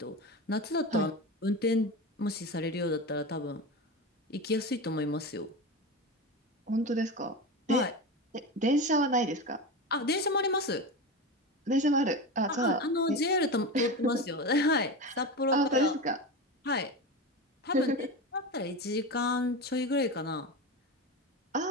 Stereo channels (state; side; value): normal; both; correlation 0.23